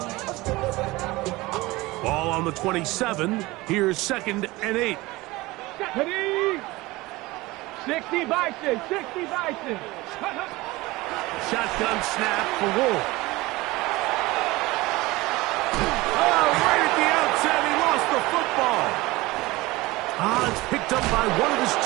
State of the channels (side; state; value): left; quieter; 20.6 dB